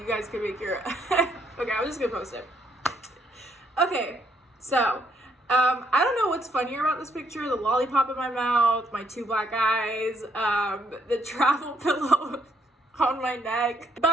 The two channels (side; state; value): both; normal; correlation 0.71